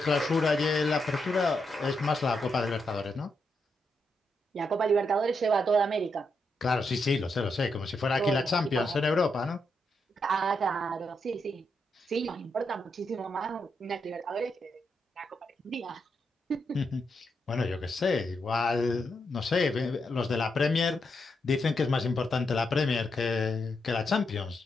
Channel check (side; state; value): both; normal; correlation 0.82